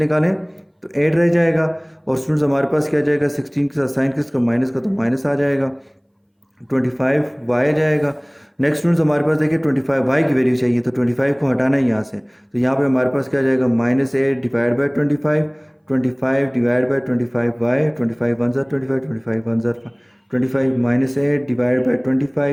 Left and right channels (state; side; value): identical; both; correlation 1.00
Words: तो 8 रह जाएगा। और स्टूडेंट्स हमारे पास क्या जाएगा 16 के साथ साइन किसका माइनस का, तो माइनस आ जाएगा, 25y आ जाएगा। नेक्स्ट स्टूडेंट्स हमारे पास देखिए 25y की वैल्यू चाहिए, तो 25 को हटाना है यहाँ से, तो यहाँ पे हमारे पास क्या जाएगा minus 8 divide by 25, 25 divide by 25y, 25 1 ज़ा 25, 25 1 ज़ा 25 minus 8 divide by